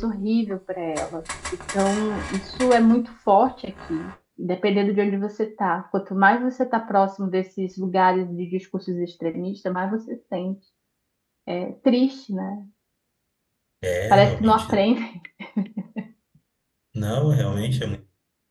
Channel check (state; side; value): identical; both; correlation 1.00